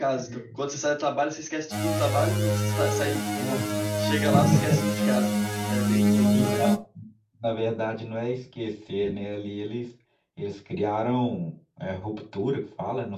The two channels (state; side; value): identical; both; correlation 1.00